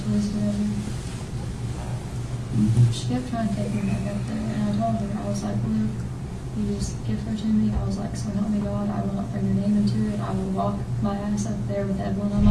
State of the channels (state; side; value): identical; both; correlation 1.00